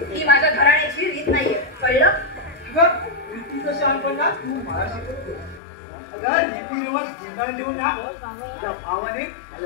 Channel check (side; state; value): right; drops out; at 5.6 s